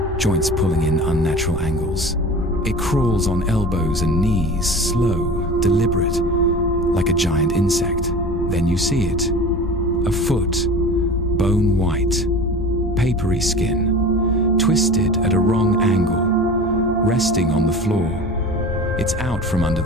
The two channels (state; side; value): normal; both; correlation 0.36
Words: joints pulling in unnatural angles. It crawls on elbows and knees, slow, deliberate, like a giant insect. Then you see it. A foot, bone white, papery skin, twisted at a wrong angle, resting on the floor. It's out from under